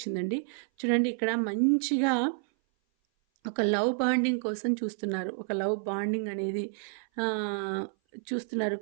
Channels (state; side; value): silent; left; 57 dB below the other